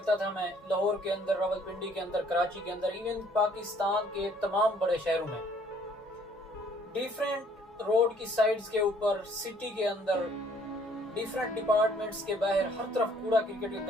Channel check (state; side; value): normal; both; correlation 0.61